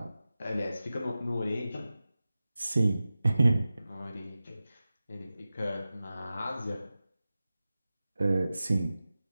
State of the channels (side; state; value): both; inverted; correlation -0.95